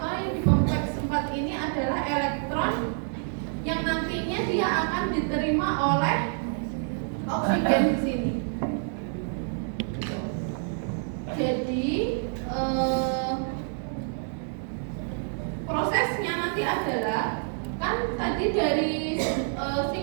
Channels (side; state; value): left; silent; 60 dB below the other